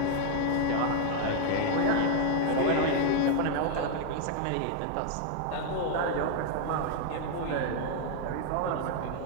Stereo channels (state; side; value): different; both; correlation 0.00